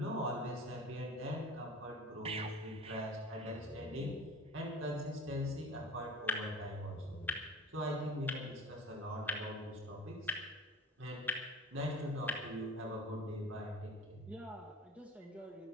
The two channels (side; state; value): both; normal; correlation 0.37